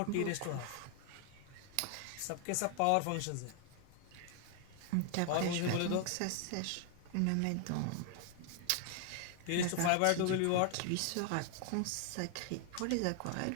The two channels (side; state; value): both; different; correlation 0.00